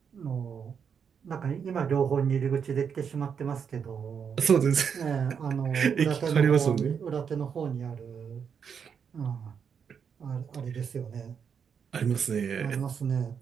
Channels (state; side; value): quieter; left; 7.0 dB